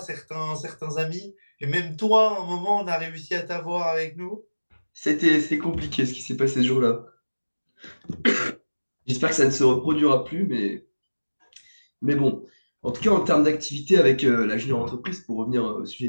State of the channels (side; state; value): both; inverted; correlation -1.00